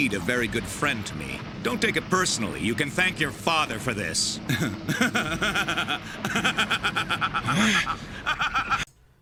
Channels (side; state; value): both; identical; correlation 1.00